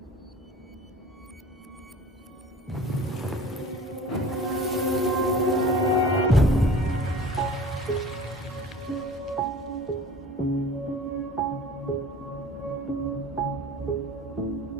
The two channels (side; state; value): both; normal; correlation 0.43